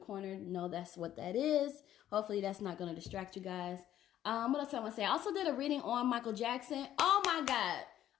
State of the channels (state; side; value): quieter; right; 11.9 dB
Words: know that's what that is. Hopefully that's not going to distract you guys. What else I want to say? I also did a reading on Michael Jackson. Oh my God.